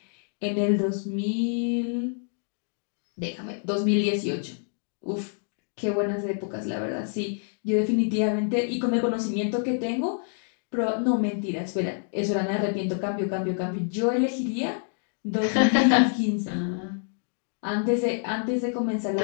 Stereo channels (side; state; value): right; silent; 60 dB below the other